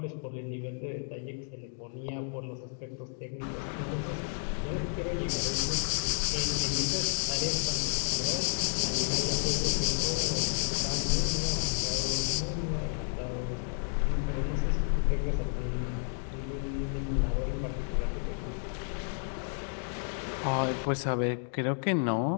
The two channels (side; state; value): right; silent; 57 dB below the other